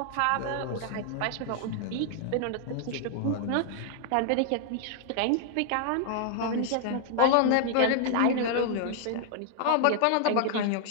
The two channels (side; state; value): both; different; correlation 0.00